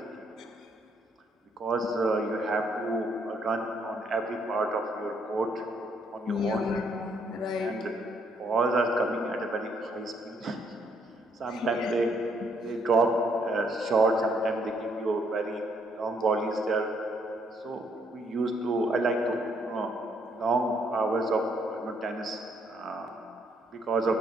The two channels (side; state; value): both; normal; correlation 0.71